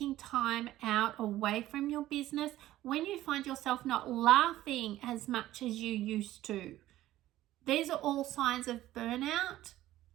time out away from your business, when you find yourself not laughing as much as you used to. These are all signs of burnout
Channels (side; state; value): left; quieter; 14.7 dB